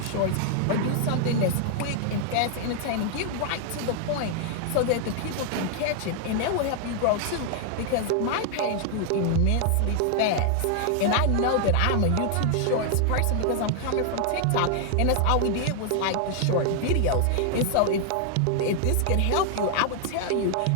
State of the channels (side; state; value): both; different; correlation 0.00